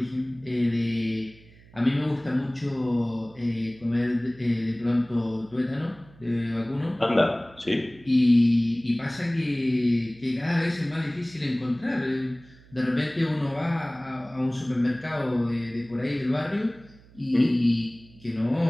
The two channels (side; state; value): right; noise; hum, 25 dB below the sound